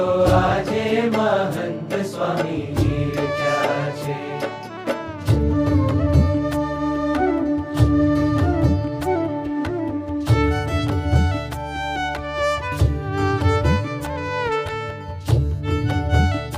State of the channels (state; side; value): identical; both; correlation 1.00